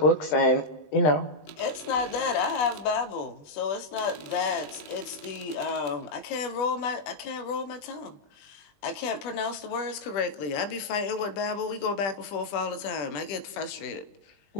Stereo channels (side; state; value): right; late; 20 ms